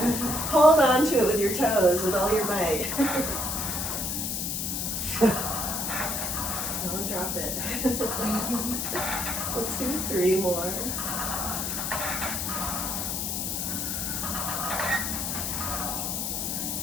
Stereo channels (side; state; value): left; noise; hiss, 1 dB below the sound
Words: hold on to it with your toes with all your might. Don't drop it. Let's do 3 more.